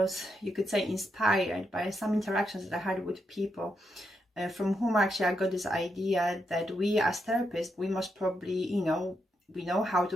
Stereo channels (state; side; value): normal; both; correlation 0.82